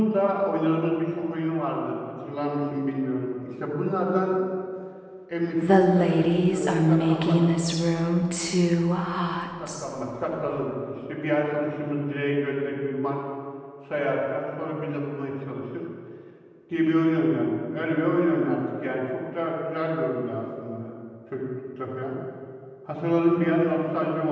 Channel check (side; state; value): both; identical; correlation 1.00